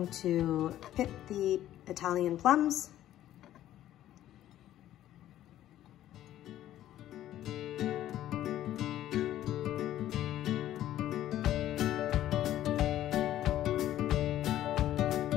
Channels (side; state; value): right; quieter; 12.8 dB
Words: to pip the Italian plums.